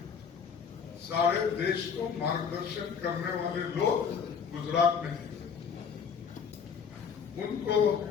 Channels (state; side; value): quieter; right; 6.6 dB